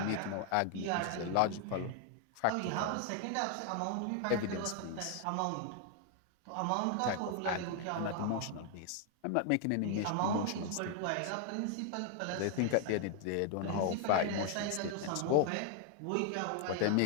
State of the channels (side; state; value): both; different; correlation 0.00